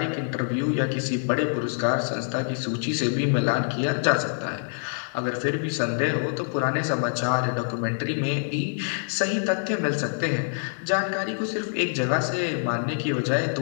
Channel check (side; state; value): right; silent; 61 dB below the other